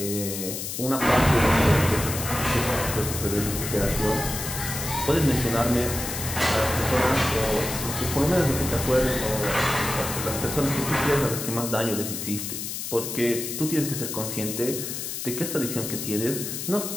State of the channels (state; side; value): noise; left; hiss, 5 dB below the sound